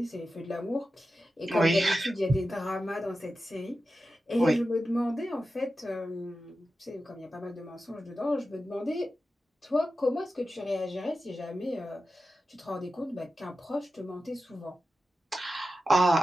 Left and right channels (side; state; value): both; normal; correlation 0.92